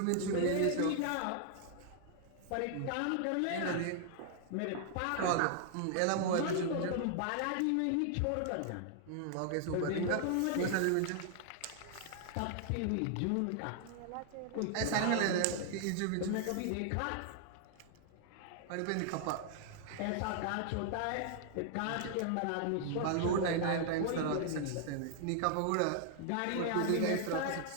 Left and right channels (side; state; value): both; different; correlation 0.00